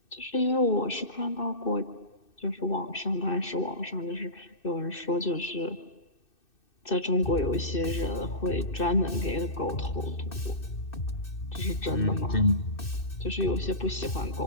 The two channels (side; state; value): right; late; 2.6 ms